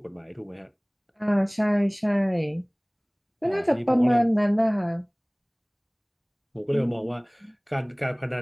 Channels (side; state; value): both; identical; correlation 1.00